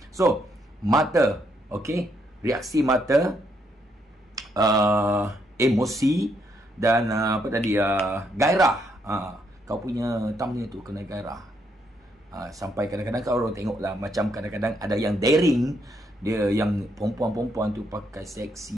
So, mata. Okay? Reaksi mata, emosi, dan apa tadi, gairah. Kau punya thumbnail tu kena gairah. Sampai kadang-kadang kau orang tengok lah, macam kadang-kadang ada yang daring, dia yang perempuan-perempuan tu pakai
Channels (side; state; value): both; normal; correlation 0.75